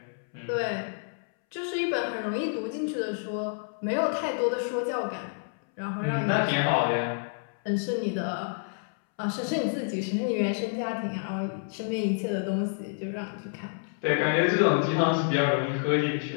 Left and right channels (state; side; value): silent; right; 59 dB below the other